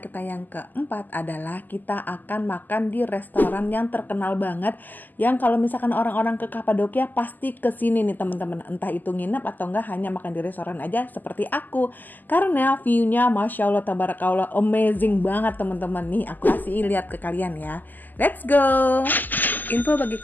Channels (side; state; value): right; late; 0.086 ms